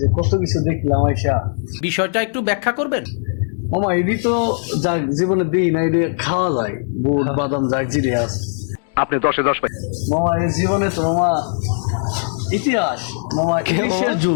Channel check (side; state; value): right; silent; digital silence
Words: কত কিছু দেখলাম আইসা। বিষয়টা একটু ব্যাখ্যা করবেন? মামা এটি তো যা জীবনে দিই না, এটি খাওয়া যায়, বুট বাদাম যা জিরে আছে। আপনি 10-10 পাই। মামা এই জীবনে তো মামা ইতিহাস, মামা ইলিশের